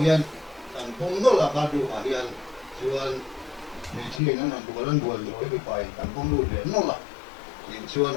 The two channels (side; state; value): right; drops out; at 4.2 s